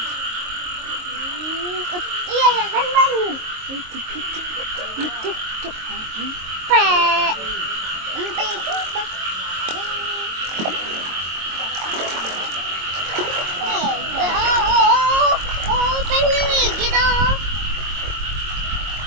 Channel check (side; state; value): left; late; 22 ms